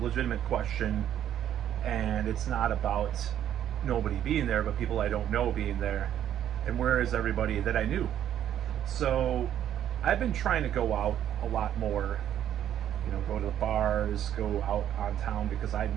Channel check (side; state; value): left; quieter; 10.6 dB